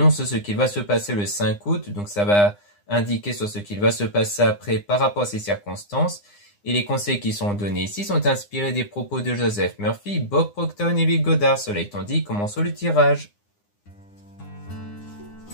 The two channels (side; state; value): right; late; 9.8 ms